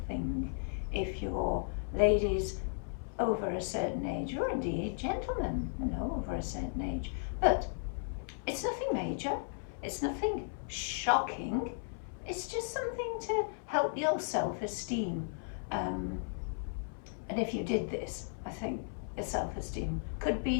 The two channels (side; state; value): right; silent; 54 dB below the other